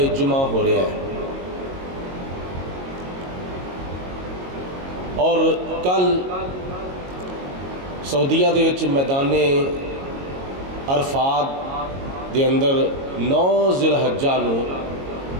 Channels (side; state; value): left; late; 22 ms